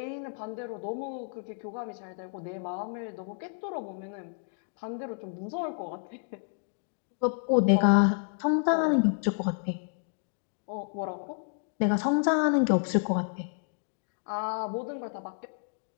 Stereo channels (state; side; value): silent; right; digital silence